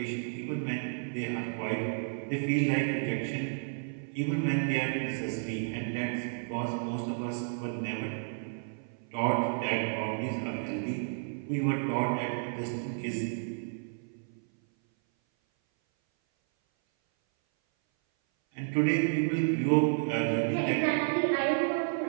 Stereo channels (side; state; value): left; silent; 56 dB below the other